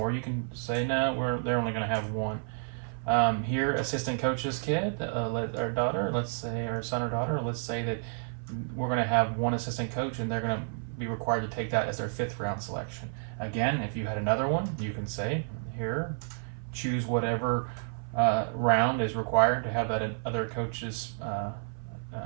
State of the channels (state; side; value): silent; left; 56 dB below the other